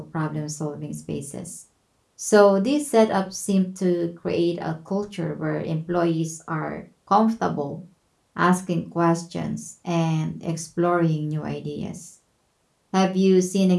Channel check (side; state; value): both; identical; correlation 1.00